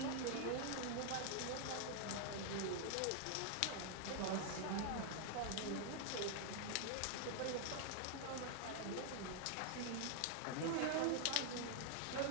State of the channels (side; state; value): both; different; correlation 0.00